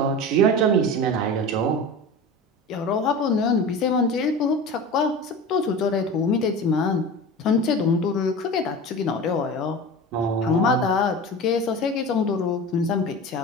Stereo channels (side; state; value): both; normal; correlation 0.32